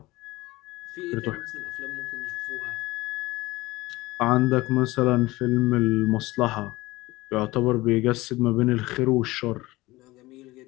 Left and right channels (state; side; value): quieter; right; 19.8 dB